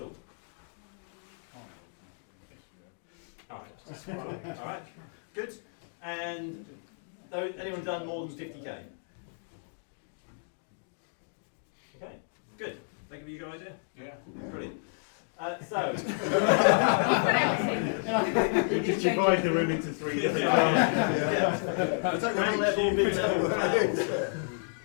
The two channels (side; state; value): right; silent; digital silence